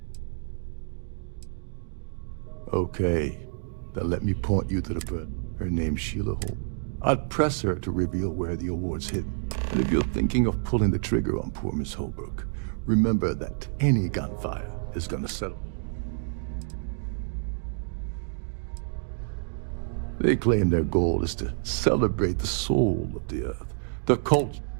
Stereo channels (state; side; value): silent; left; digital silence